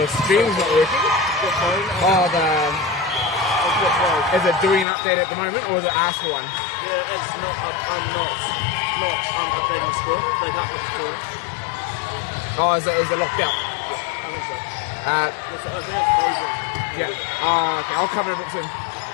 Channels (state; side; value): drops out; right; at 4.9 s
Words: Your stream's not working? The phone. Oh, is it doing an update at the moment, or is it asked for one? Yeah, it's not. I'm not updating the score. They got the score. Oh, is it locked out? I think so. Uh, I think it's frozen. yeah. Okay, I'll cover it soon.